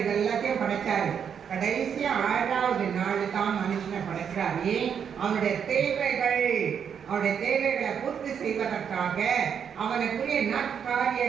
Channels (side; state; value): left; quieter; 7.6 dB